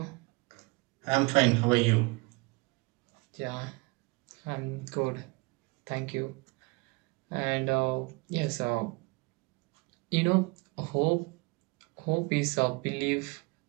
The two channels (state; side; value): quieter; left; 27.8 dB